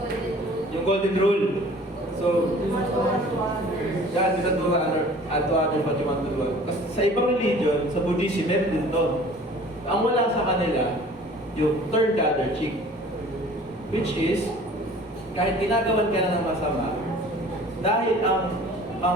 Yung golden rule. So, God is to honor and to others what you want to do. Kasi sa ibang religion, sa Buddhism, meron din to. Ang wala sa kanila, yung turn the other cheek. Which is, kahit ginagawan ka na ng masama, dahil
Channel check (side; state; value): both; normal; correlation 0.48